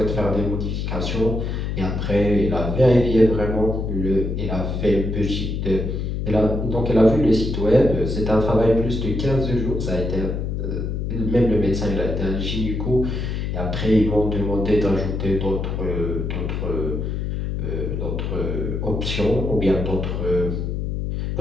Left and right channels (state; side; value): noise; left; hum, 2 dB below the sound